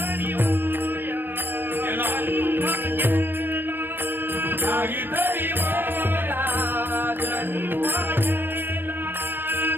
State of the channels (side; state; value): left; late; 0.096 ms